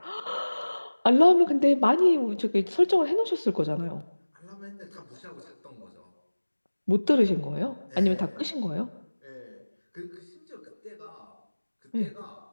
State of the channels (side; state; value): both; inverted; correlation -1.00